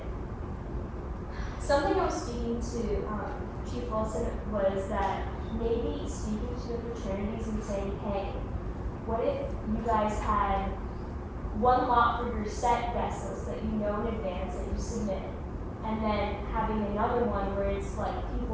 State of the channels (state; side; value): identical; both; correlation 1.00